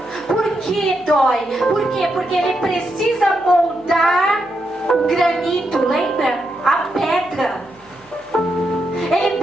Por que dói? Por quê? Porque Ele precisa moldar o granito, lembra? A pedra. Ele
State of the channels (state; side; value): noise; left; hum, 30 dB below the sound